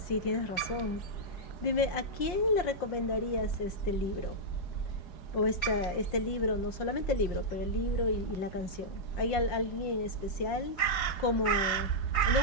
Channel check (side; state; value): right; late; 5.6 ms